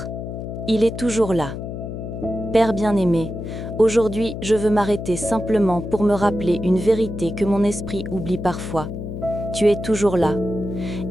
Il est toujours là. Père bien-aimé, aujourd'hui je veux m'arrêter simplement pour me rappeler une vérité que mon esprit oublie parfois. Tu es toujours là.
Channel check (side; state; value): left; noise; hum, 7 dB below the sound